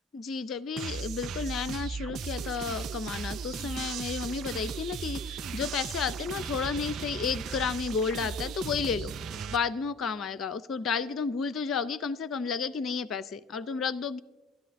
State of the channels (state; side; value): quieter; right; 3.1 dB